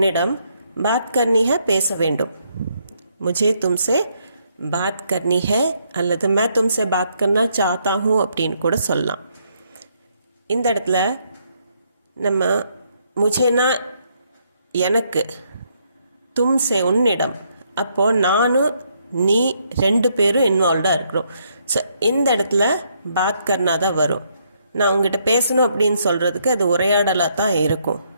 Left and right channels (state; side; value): inverted; both; correlation -0.73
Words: बात करनी है பேச வேண்டும். मुझे तुमसे बात करनी है அல்லது मैं तुमसे बात करना चाहता हूँ அப்படின்னு கூட சொல்லலாம். இந்த இடத்துல நம்ம முझेனா எனக்கு, தும்சே உன்னிடம், அப்போது நானும் நீ 2 பேரும் இன்வால்வ்டாக இருக்கிறோம். ஸோ இந்த இடத்துல பாத் கர்னா தான் வரும். நான் உங்ககிட்ட பேசணும் அப்படின்னு சொல்கிறதுக்கு அது உரையாடலாக தான் இருக்கும்.